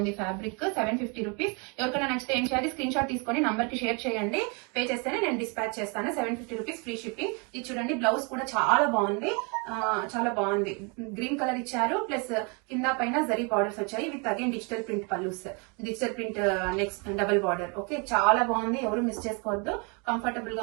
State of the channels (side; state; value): left; quieter; 33.3 dB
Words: Fabric 750 rupees. ఎవరికైనా నచ్చితే ఏం చేయాలి, స్క్రీన్ షాట్ తీసుకొని నంబర్ కి షేర్ చేయండి. పే చేస్తేనే నేను డిస్పాచ్ చేస్తాను. 750 రూపీస్ ఫ్రీ షిప్పింగ్. ఇది చూడండి, బ్లౌజ్ కూడా చాలా బాగుంది. చాలా బాగుంది. గ్రీన్ కలర్ ఇచ్చారు, ప్లస్ కింద పైన జరీ బార్డర్స్ వచ్చాయి with again digital print pallus, digital print next double border, okay. చాలా బాగుంది, ఎవరు మిస్ చేసుకోవద్దు. కంఫర్టబుల్